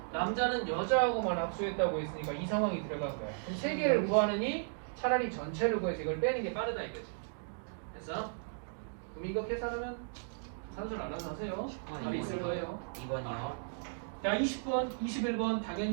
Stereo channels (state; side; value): silent; left; digital silence